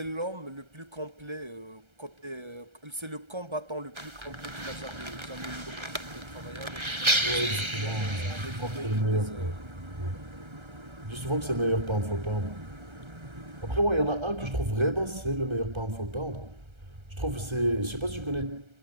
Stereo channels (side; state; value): left; late; 1.3 ms